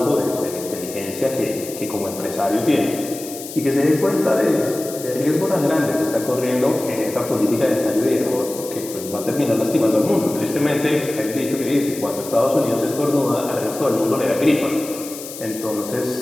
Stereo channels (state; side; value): noise; left; hiss, 12 dB below the sound